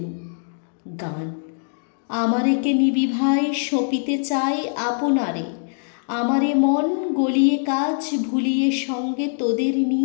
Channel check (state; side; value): silent; right; digital silence